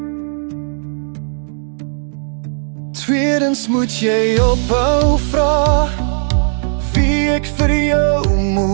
Tweedens moet jy ophou vra wie ek vir jou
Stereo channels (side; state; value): left; silent; digital silence